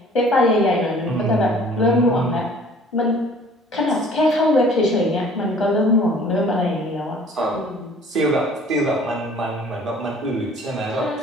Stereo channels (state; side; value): normal; both; correlation 0.52